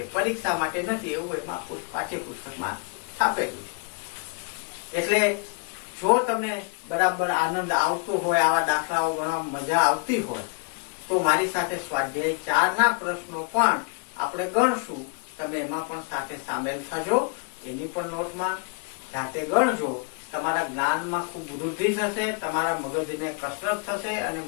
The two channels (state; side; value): quieter; right; 37.9 dB